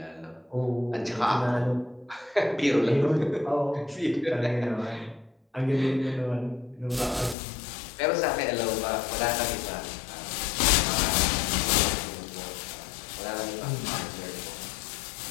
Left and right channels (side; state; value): right; drops out; at 7.4 s